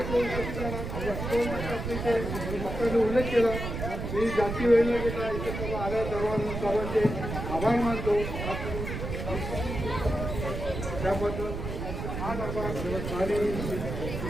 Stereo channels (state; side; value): noise; right; rumble, 5 dB below the sound